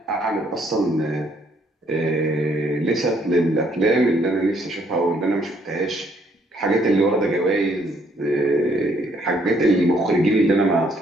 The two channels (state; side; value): normal; both; correlation 0.68